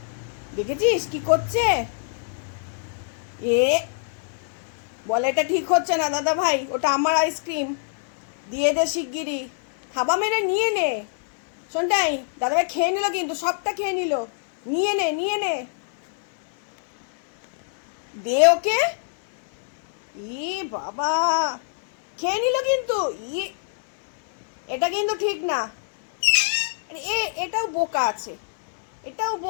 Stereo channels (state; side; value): silent; right; 61 dB below the other